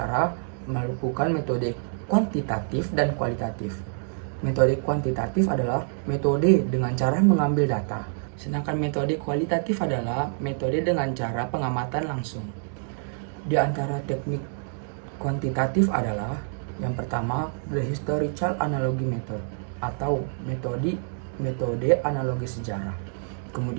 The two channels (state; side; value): silent; left; digital silence